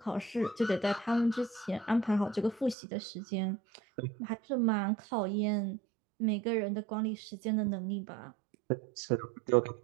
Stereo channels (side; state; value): left; drops out; at 2.8 s